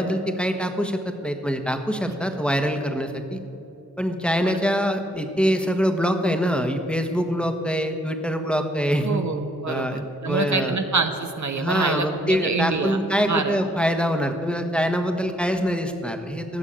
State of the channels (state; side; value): normal; both; correlation 0.68